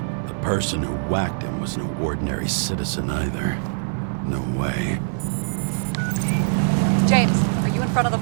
The person who whacked him was no ordinary citizen either. No way. James, are you in front of the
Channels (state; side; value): silent; left; 56 dB below the other